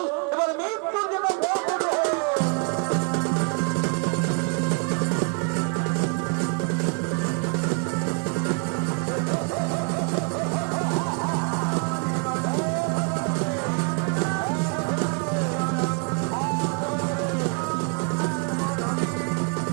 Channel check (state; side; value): quieter; left; 36.2 dB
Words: এবার মৃত্যুর জন্য প্রস্তুত হও।